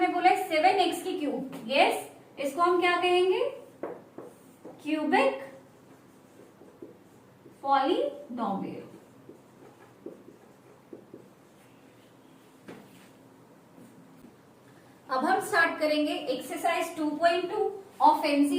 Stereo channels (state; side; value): identical; both; correlation 1.00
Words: बोला है 7x की क्यूब। यस, इसको हम क्या कहेंगे क्यूबिक पॉलिनोमियल। अब हम स्टार्ट करेंगे एक्सरसाइज 2.2 ऑफ